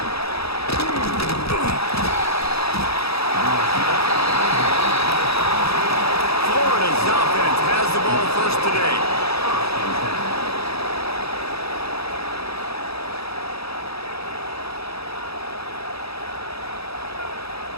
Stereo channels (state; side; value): late; right; 0.77 ms